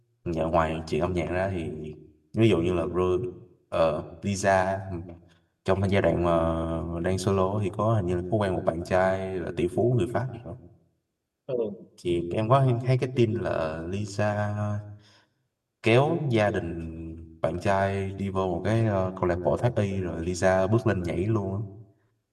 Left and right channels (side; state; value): both; identical; correlation 1.00